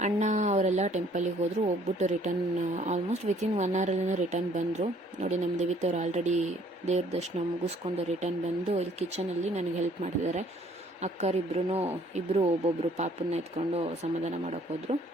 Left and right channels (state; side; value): normal; both; correlation 0.60